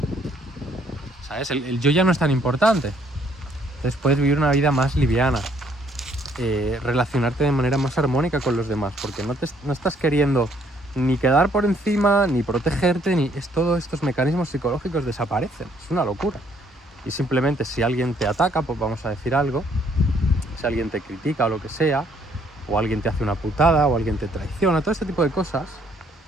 ¿sabes? El yo ya no es tan importante. Entonces puedes vivir una vida más liviana, relacionarte de manera más armónica con los demás, porque no estás queriendo ni quedar por encima, ni protegerte, todos estos mecanismos psicológicos desaparecen. Es una locura. Y simplemente si alguien te ataca, pues vamos a decir algo, si alguien te critica o lo que sea, o alguien te hace una putada, o alguien te traiciona, todo este tipo de cosas,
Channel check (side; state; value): both; normal; correlation 0.66